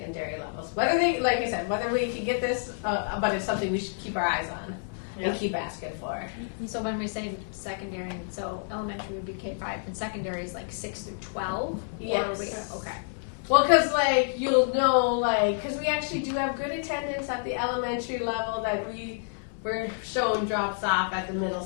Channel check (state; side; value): silent; right; 58 dB below the other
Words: levels? Whether they, like I said, whether we can get this, but it's something we should keep our eyes on and keep asking for. So when we say secondary, so elementary would be K-5, and secondary is like 6 through 12? Yes. Okay. Well, because, like, you'll know, like, because we actually do have good attendance at the elementary level that we're showing drops off at the middle